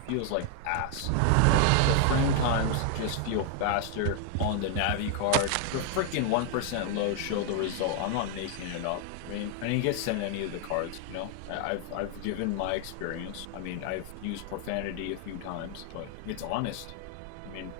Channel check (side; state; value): both; different; correlation 0.00